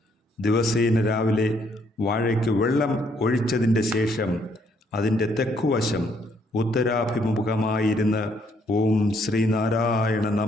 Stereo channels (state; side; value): normal; both; correlation 0.69